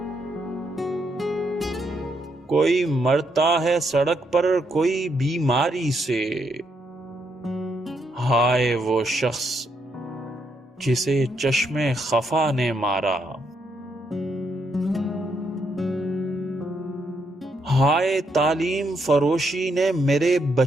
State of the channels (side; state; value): both; normal; correlation 0.77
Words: کوئی مرتا ہے سڑک پر کوئی بیماری سے، ہائے وہ شخص جسے چشم خفا نے مارا۔ ہائے تعلیم فروشی نے میرے